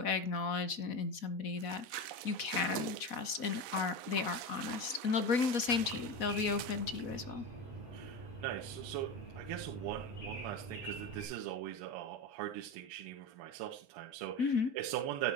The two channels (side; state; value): right; late; 4.1 ms